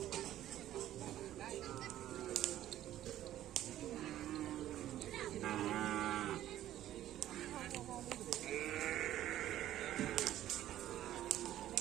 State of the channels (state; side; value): quieter; left; 12.9 dB